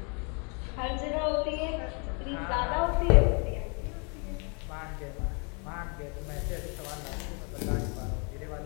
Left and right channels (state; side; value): quieter; right; 35.5 dB